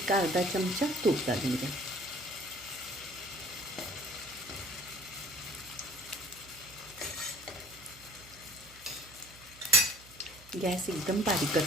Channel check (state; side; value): noise; right; hum, 22 dB below the sound